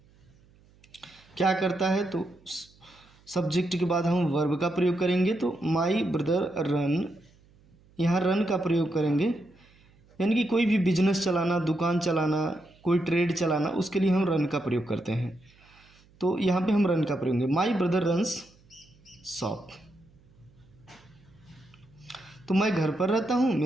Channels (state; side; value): noise; right; hum, 29 dB below the sound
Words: क्या करता है तो सब्जेक्ट के बाद हम वर्ब का प्रयोग करेंगे, तो माई ब्रदर रन यहाँ रन का प्रयोग करेंगे, यानी कि कोई भी बिजनेस चलाना, दुकान चलाना, कोई ट्रेड चलाना, उसके लिए हम रन का प्रयोग करते हैं। तो यहाँ पे हम रन का प्रयोग करेंगे। माई ब्रदर रन्स शॉप, तो मैं घर पर रहता हूँ,